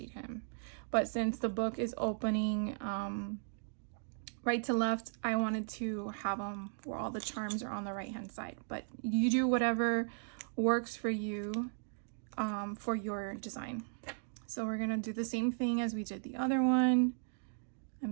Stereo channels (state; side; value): silent; left; digital silence